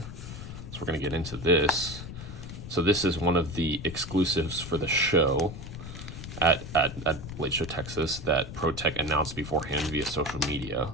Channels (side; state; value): left; noise; rumble, 10 dB below the sound